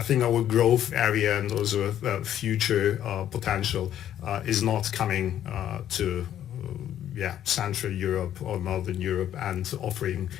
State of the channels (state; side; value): quieter; right; 11.0 dB